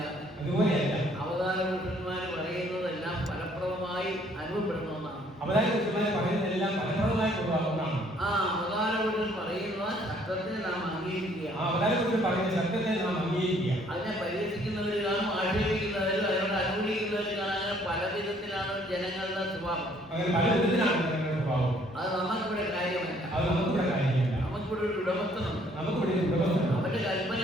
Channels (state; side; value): normal; both; correlation 0.62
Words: അവതാര പുരുഷന്മാർ പറയുന്നതെല്ലാം ഫലപ്രദമായി അനുഭവപ്പെടുന്ന ഒന്നാണ്. അവതാര പുരുഷന്മാർ പറയുന്നതെല്ലാം ഫലപ്രദമായിട്ടുള്ള ഒന്നാണ്. ആ അവതാര പുരുഷൻ പറയുന്ന ശബ്ദത്തെ നാം അംഗീകരിക്കുക. ആ അവതാര പുരുഷൻ പറയുന്ന ശബ്ദത്തെ നാം അംഗീകരിക്കുക. അതിനെ പരിഹസിക്കുന്നവർ കാണും, ആക്ഷേപിക്കുന്നവരും അതിനോട് അനുകൂലിക്കുന്നവർ കാണാൻ പല വിധത്തിലാണ് ജനങ്ങളുടെ സ്വഭാവം. അങ്ങനെ പല വിധത്തിലാണ് ജനങ്ങളുടെ സ്വഭാവം. അത് നമുക്കിവിടെ കാര്യമല്ല, അത് നമുക്കിവിടെ കാര്യമല്ല. നമുക്കിവിടെ ഒരു ഉടമസ്ഥനുണ്ട്, നമുക്കിവിടെ ഒരു ഉടമസ്ഥനുണ്ട്. അവന്റെ